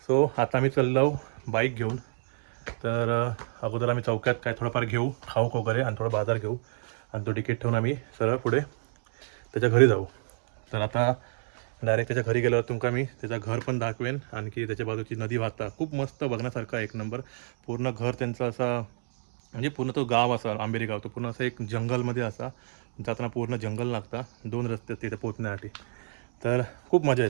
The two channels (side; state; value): left; silent; digital silence